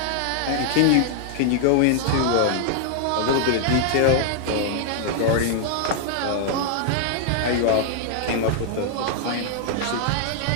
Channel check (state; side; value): different; both; correlation -0.01